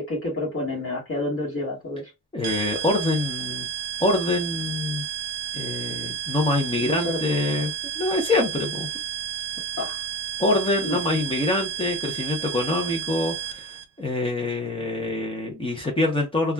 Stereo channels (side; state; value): both; normal; correlation 0.30